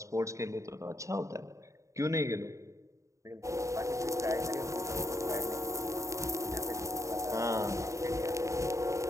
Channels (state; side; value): late; left; 0.15 ms